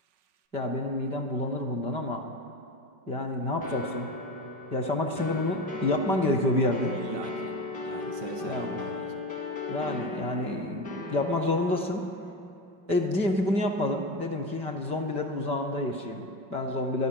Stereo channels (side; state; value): left; late; 5.1 ms